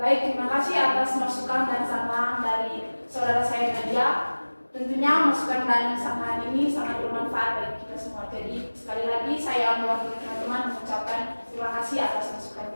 terima kasih atas masukan dan saran dari saudara saya Nadia. Tentunya masukan dan saran ini sangat bermanfaat bagi kita semua. Jadi sekali lagi saya mewakili teman-teman mengucapkan terima kasih atas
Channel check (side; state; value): both; inverted; correlation -1.00